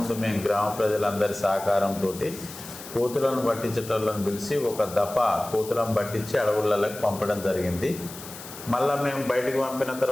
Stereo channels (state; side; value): noise; left; hiss, 14 dB below the sound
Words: మేము గ్రామ ప్రజలందరి సహకారంతో కోతులను పట్టించేటోళ్ళని పిలిచి ఒక దఫా కోతులను పట్టించి అడవులలోకి పంపడం జరిగింది. మళ్ళీ మేము బయటికి పంపిన